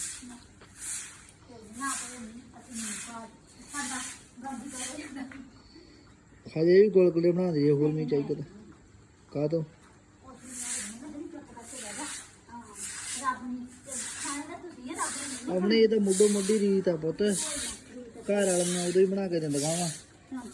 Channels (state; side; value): identical; both; correlation 1.00